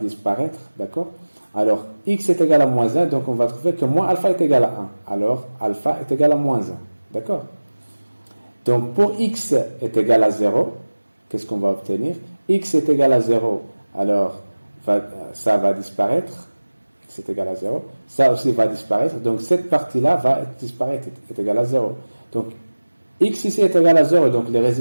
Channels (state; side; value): inverted; both; correlation -1.00